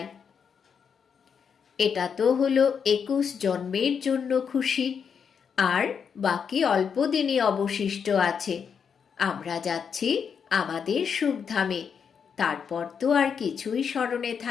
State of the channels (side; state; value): right; quieter; 6.8 dB